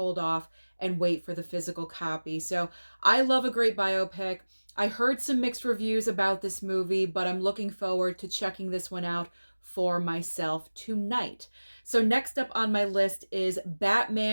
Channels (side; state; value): both; inverted; correlation -1.00